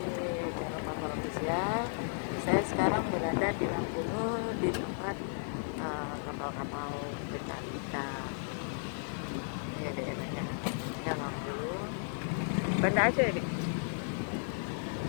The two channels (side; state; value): right; silent; digital silence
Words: channel Papa Official. Saya sekarang berada di Lampunu di tempat kapal-kapal pencari ikan. Ini daerahnya ya Lampunu, Banda Aceh nih.